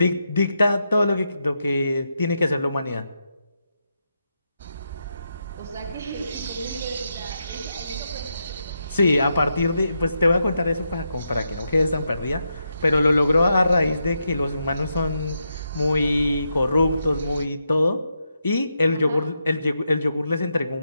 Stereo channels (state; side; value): inverted; both; correlation -0.84